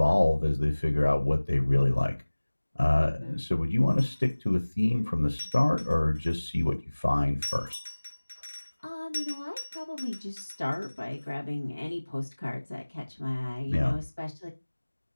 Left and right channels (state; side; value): inverted; both; correlation -1.00